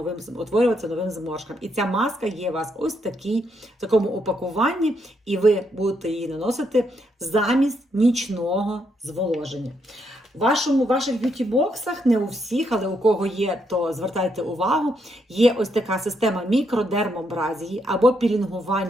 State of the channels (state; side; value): normal; both; correlation 0.77